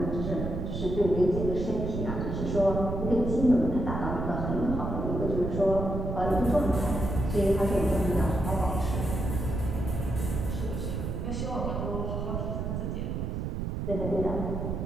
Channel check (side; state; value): right; noise; rumble, 3 dB below the sound